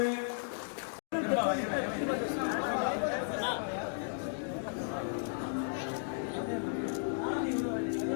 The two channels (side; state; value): right; silent; digital silence